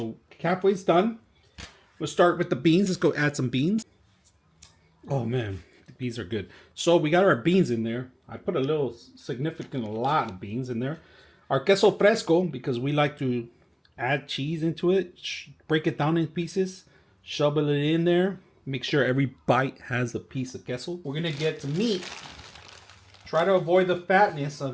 halfway's done. We'll start with the beans. Let's go add some beans. Oh man, the beans are good. So we got our beans in there. I put a lot of beans in there. Our queso fresco, because we like to add cheese into it, break it down in pieces, shovel it in there, make sure every bite has a piece of queso. We're gonna get some meat. Try to avoid the fatness of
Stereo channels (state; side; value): identical; both; correlation 1.00